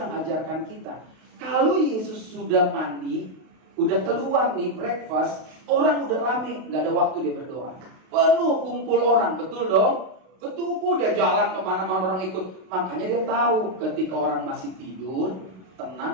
ajarkan kita. Kalau Yesus sudah mandi, udah keluar nih breakfast, orang udah rame, gak ada waktu dia berdoa. Penuh kumpul orang, betul dong? Betul, udah jalan kemana-mana orang ikut. Makanya dia tahu ketika orang masih tidur,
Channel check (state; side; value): late; left; 32 ms